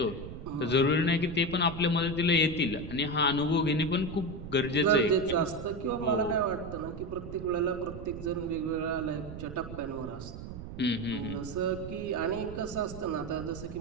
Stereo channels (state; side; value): noise; right; rumble, 10 dB below the sound